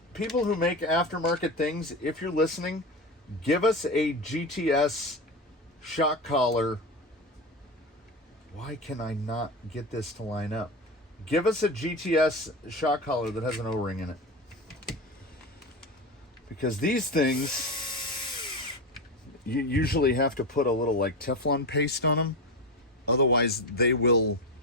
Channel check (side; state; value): both; normal; correlation 0.21